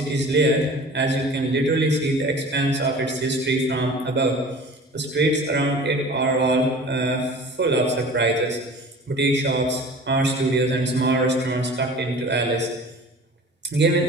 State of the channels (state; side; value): normal; both; correlation 0.42